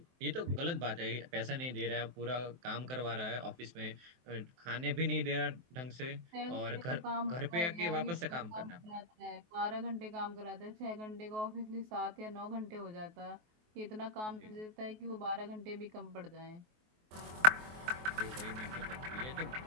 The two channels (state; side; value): late; left; 23 ms